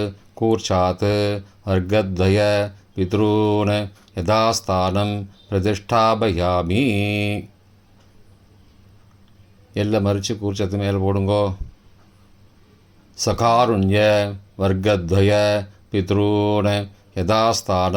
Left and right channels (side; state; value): both; identical; correlation 1.00